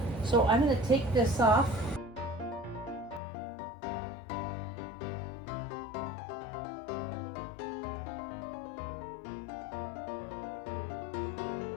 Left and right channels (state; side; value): drops out; right; at 3.2 s